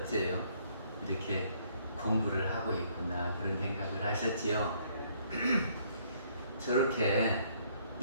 이렇게 공부를 하고 있구나 그런 생각을 하셨지요? 저렇게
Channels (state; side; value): inverted; both; correlation -0.65